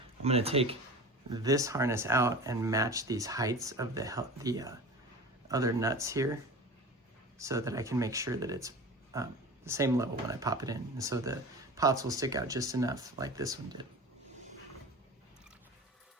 I'm going to take this harness out and match these heights of the other nuts here so that I can make sure that it's the same level when I pop it in, and so the pots will stick out just enough like this one did.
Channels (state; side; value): normal; both; correlation 0.34